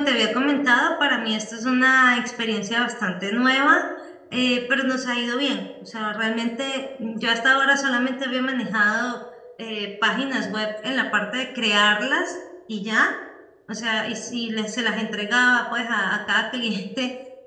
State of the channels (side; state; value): both; identical; correlation 1.00